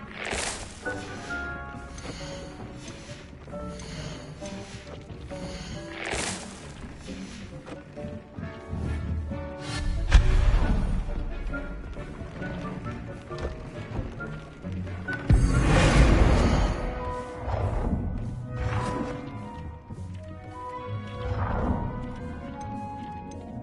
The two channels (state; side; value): identical; both; correlation 1.00